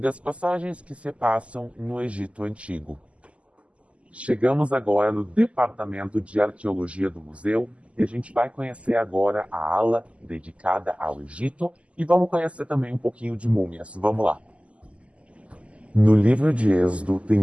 passagens que se passam no Egito Antigo. Chegamos agora no Departamento de Arqueologia do Museu e a gente vai conhecer agora a ala dedicada ao Egito e vamos conhecer também um pouquinho de múmias. Vamos lá! No livro de Êxodo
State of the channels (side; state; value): left; late; 0.060 ms